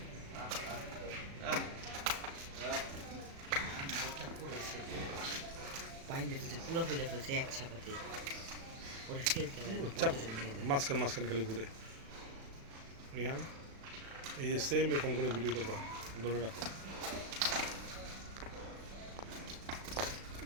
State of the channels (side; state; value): left; late; 36 ms